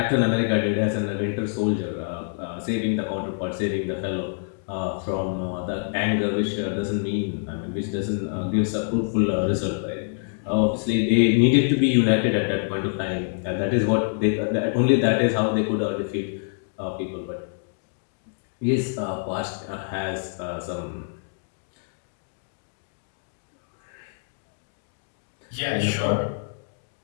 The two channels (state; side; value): silent; right; digital silence